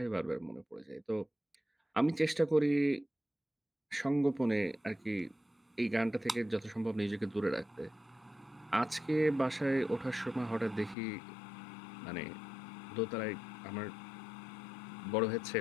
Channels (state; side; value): drops out; right; at 11.0 s